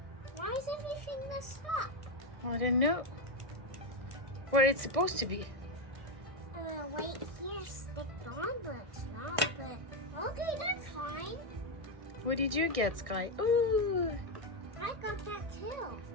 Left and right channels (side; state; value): left; late; 1.6 ms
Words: Why is everything messed up? I don't know where it's supposed to be. Wait, here, stick on, but it's not. But okay, that's fine. What did you get, Sky? Ooh, I got that too.